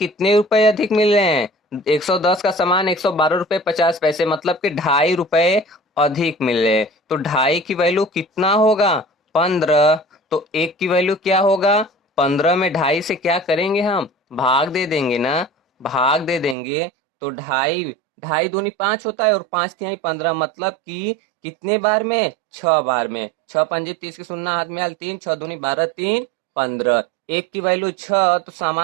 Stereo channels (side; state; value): left; drops out; at 16.6 s